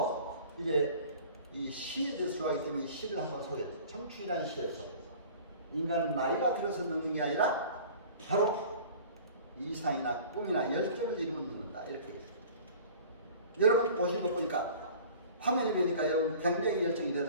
이제 이 시에 대해서 좋아하기 때문에 이 시를 한번 소개했어요. 청춘이라는 시에서 인간은 나이가 들어서 늙는 게 아니라 바로 이상이나 꿈이나 열정을 이루면 늙는다. 이렇게 얘기했어요. 여러분 보시는 거 보니까 화면이 보니까 여러분 굉장히 열정이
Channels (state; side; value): inverted; both; correlation -0.44